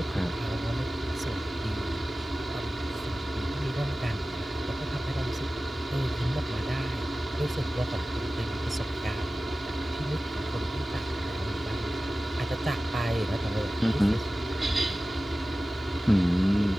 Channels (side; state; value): both; normal; correlation 0.96